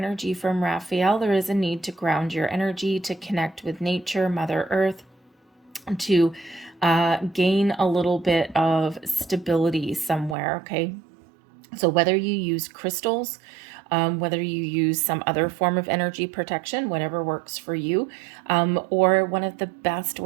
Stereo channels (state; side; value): drops out; left; at 10.4 s